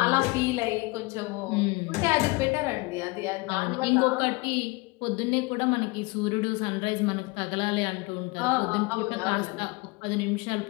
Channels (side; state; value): right; quieter; 25.1 dB